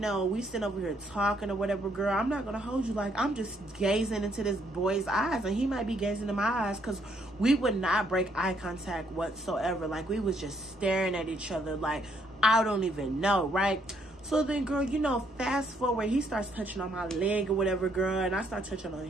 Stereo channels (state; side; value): normal; both; correlation 0.70